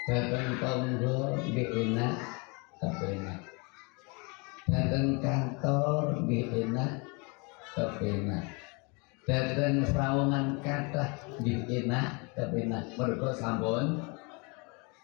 Jateng tangga enak kepenak. Jateng kantor enak kepenak. Jateng sawangan kathah enak kepenak. Mergo sampun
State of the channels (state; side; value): quieter; right; 31.1 dB